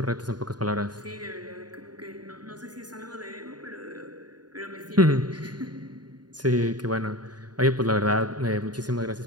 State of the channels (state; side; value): late; left; 0.70 ms